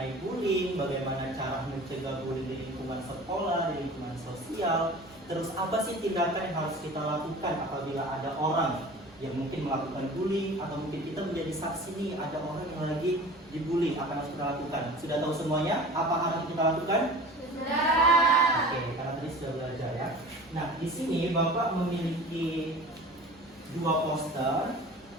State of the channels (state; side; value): normal; both; correlation 0.40